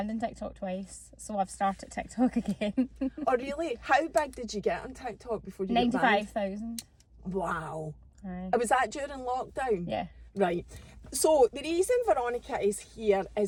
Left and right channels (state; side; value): identical; both; correlation 1.00